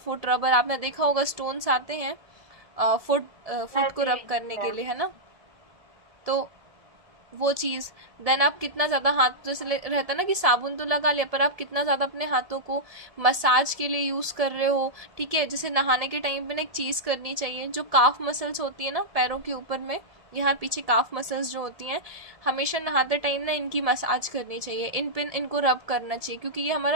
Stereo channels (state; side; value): late; left; 1.8 ms